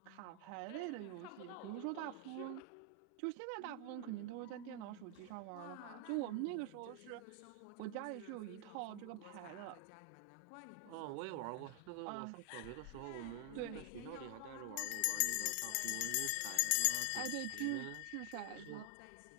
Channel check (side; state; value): both; different; correlation 0.00